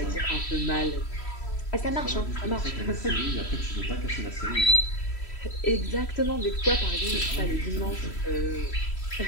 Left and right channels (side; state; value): right; late; 3.1 ms